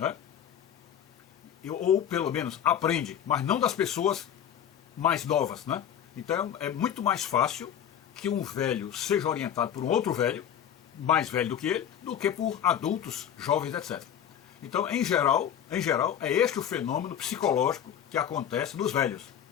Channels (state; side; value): quieter; right; 9.4 dB